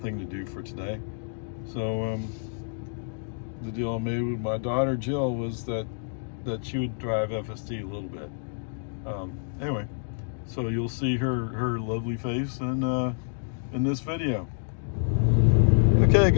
thing to do for today. So the deal I made with my daughter Jill was that she would drive FSD a little bit. Anyway, so you'll see her lovely face in this video. Okay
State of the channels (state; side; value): silent; right; digital silence